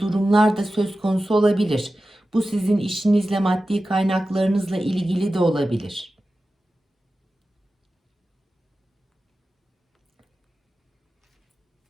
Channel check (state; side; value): normal; both; correlation 0.94